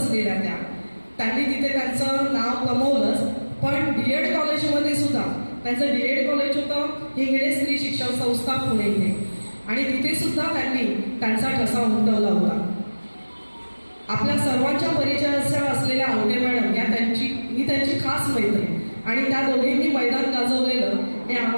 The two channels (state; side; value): inverted; both; correlation -1.00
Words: त्यांनी तिथे त्यांचं नाव कमवलंच. पण DED कॉलेजमध्ये सुद्धा त्यांचं DED कॉलेज होतं हिंगणे स्त्री शिक्षण संस्था पुणे इथे, आणि तिथे सुद्धा त्यांनी त्यांचा ठसा उमटवला होता. आपल्या सर्वांच्या परिचयाच्या असलेल्या आवटे मॅडम या मी त्यांची खास मैत्रीण, आणि त्या दोघींनी मैदान गाजवलेलं हे